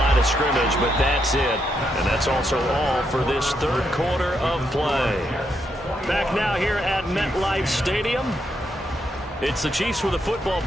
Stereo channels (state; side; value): normal; both; correlation 0.79